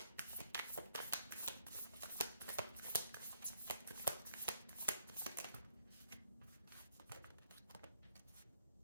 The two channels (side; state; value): both; inverted; correlation -0.70